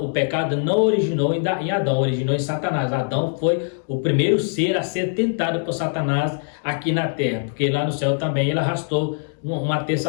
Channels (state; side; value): silent; right; digital silence